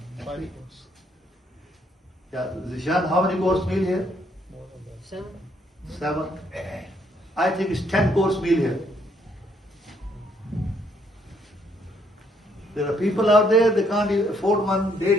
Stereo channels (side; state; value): both; normal; correlation 0.70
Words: 5 course. Yeah, Zishan, how many course meal here? 7. 7. I think it's 10 course meal here. There are people out there, they can't afford one